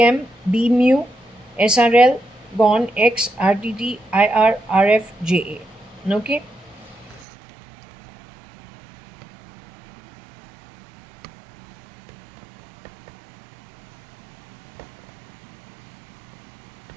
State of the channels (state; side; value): drops out; left; at 7.2 s